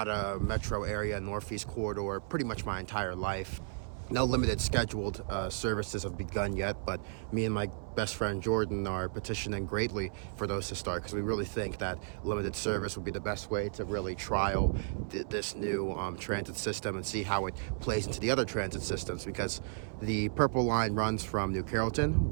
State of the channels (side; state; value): left; silent; 55 dB below the other